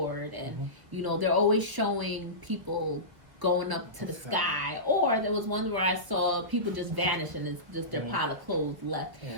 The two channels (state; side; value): late; left; 1.4 ms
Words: and, they're always showing people going up to the sky, or there was one where I saw people just vanish and it's just their pile of clothes left.